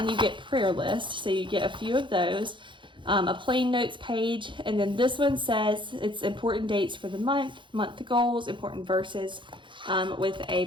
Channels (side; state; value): left; late; 0.23 ms